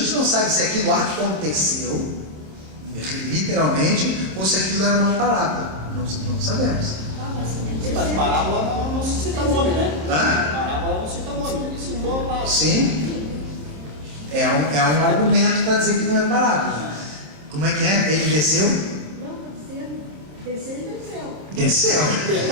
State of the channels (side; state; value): left; late; 27 ms